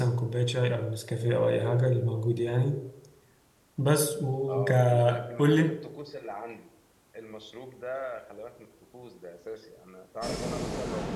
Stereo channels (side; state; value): both; identical; correlation 1.00